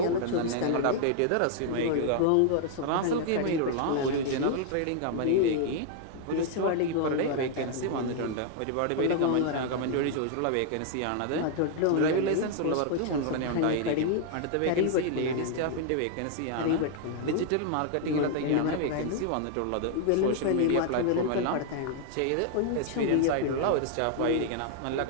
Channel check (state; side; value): different; both; correlation 0.00